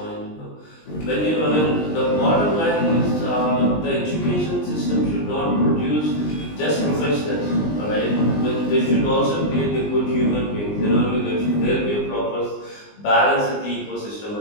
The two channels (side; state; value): right; late; 20 ms